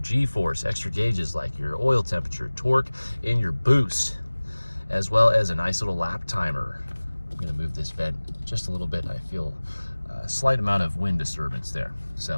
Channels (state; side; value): inverted; both; correlation -1.00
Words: extra gauges like your oil temperature, torque, and your boost, as well as a nice little lap timer. I'm gonna move this vent just a little bit. I feel a slight amount of wind disturbance there.